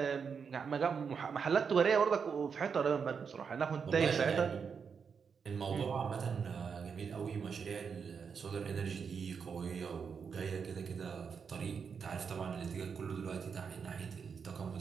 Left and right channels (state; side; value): quieter; left; 6.2 dB